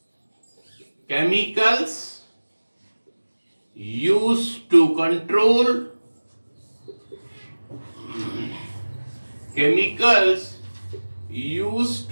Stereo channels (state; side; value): inverted; both; correlation -1.00